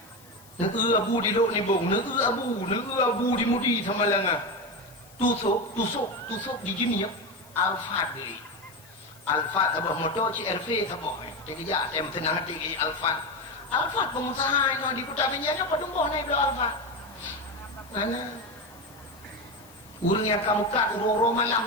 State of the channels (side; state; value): left; noise; hiss, 24 dB below the sound